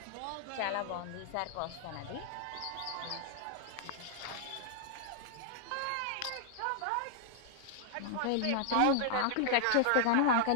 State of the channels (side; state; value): both; different; correlation -0.01